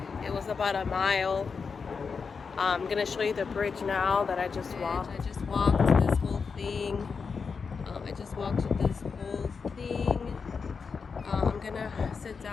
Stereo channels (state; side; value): quieter; right; 5.4 dB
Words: It was about a mile. I'm gonna show you the bridge now that I just walked. I just walked this whole thing. I'm gonna sit